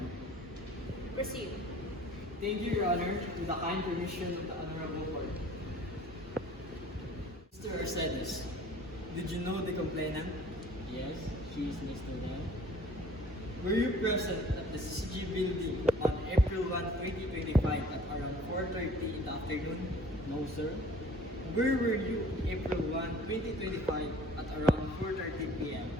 Proceed. Thank you, Your Honor, to the kind permission of the Honorable Court. Mr. Arcedes, did you know the complainant? Yes, she is Mr. Dan. Were you present at the CCG building on April 1, 2025 at around 4:30 in the afternoon? No, sir. Where were you April 1, 2025 at around 4:30 p.m.?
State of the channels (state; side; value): normal; both; correlation 0.51